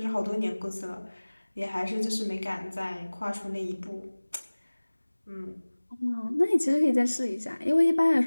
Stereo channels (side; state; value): both; inverted; correlation -1.00